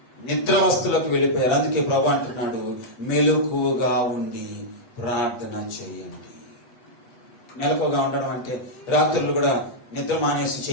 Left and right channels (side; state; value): right; late; 8.5 ms